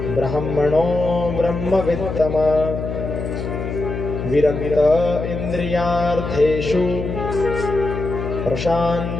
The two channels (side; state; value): left; noise; hum, 5 dB below the sound